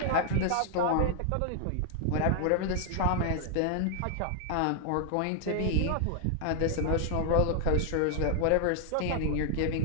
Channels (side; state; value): both; different; correlation 0.00